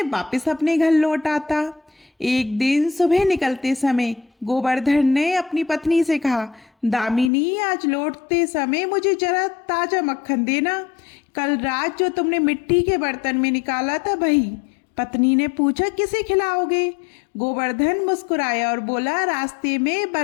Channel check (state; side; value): drops out; right; at 7.3 s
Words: वापस अपने घर लौट आता। एक दिन सुबह निकलते समय गोवर्धन ने अपनी पत्नी से कहा, दामिनी, आज लौटते समय मुझे जरा ताजा मक्खन देना। कल रात जो तुमने मिट्टी के बर्तन में निकाला था वही। पत्नी ने पूछा, किसे खिलाओगे? गोवर्धन मुस्कुराया और बोला, रास्ते में